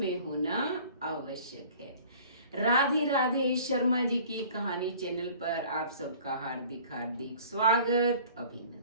होना आवश्यक है। राधे राधे। शर्मा जी की कहानी चैनल पर आप सबका हार्दिक हार्दिक स्वागत,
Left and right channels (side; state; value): both; inverted; correlation -0.48